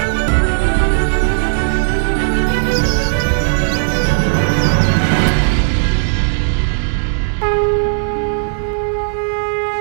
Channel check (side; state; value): left; silent; 69 dB below the other